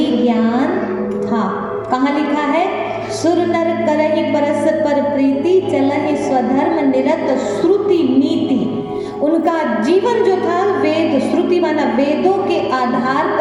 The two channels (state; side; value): identical; both; correlation 1.00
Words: ज्ञान था। कहाँ लिखा है, सुर नर करहि परस्पर प्रीति, चलहि स्वधर्म निरत श्रुति नीति। उनका जीवन जो था वेद, श्रुति माना वेदों के आधार